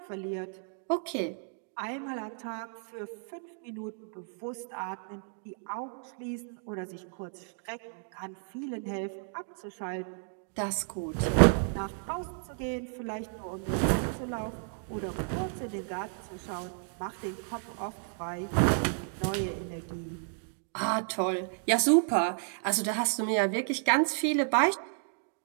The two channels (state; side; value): silent; left; 56 dB below the other